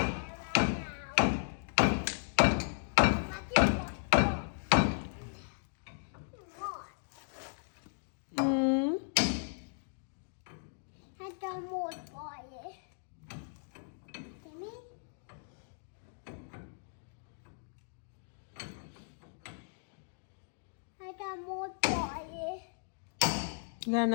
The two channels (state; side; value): silent; right; digital silence